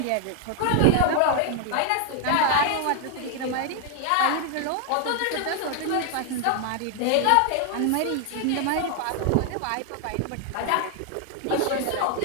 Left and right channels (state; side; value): different; both; correlation 0.00